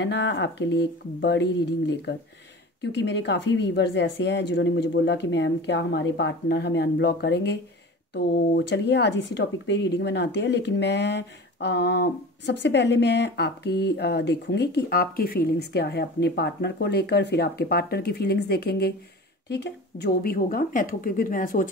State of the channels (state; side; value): normal; both; correlation 0.36